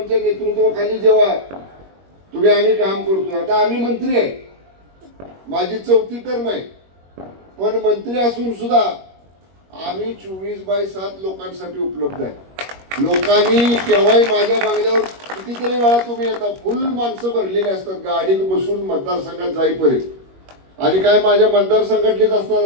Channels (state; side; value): late; left; 21 ms